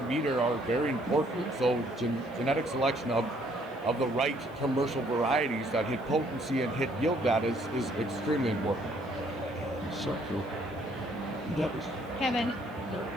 meter are very important. So genetic selection of the right commercial varieties that hit potency and hit yield data is extremely important. So cool. Kevin,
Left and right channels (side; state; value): left; noise; hiss, 30 dB below the sound